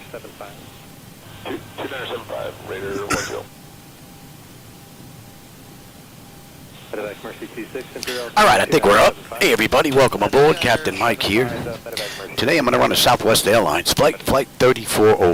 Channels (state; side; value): identical; both; correlation 1.00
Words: 2975, Raider 10. Medevac Mercy 26, Imperial. Alright, I think we're up. Hey everybody, welcome aboard. Captain Mike here. Today I'm going to run a Southwest Airlines flight